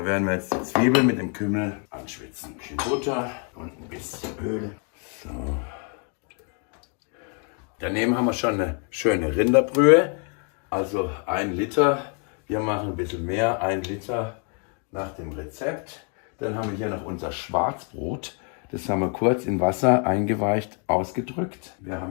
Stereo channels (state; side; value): quieter; right; 39.4 dB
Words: werden wir jetzt die Zwiebeln mit dem Kümmel anschwitzen. Ein bisschen Butter und ein bisschen Öl. So. Daneben haben wir schon eine schöne Rinderbrühe. Also 1 Liter. Wir machen ein bisschen mehr, 1 Liter nach dem Rezept. Dann haben wir hier noch unser Schwarzbrot. Das haben wir kurz in Wasser eingeweicht, ausgedrückt. Wir